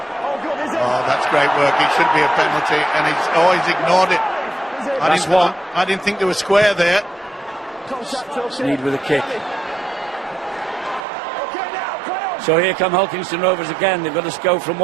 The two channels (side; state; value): left; drops out; at 11.1 s